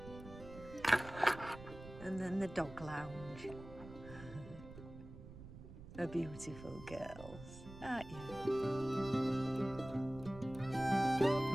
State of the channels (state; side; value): noise; right; rumble, 14 dB below the sound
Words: And then the dog lounge. A beautiful girls, aren't you?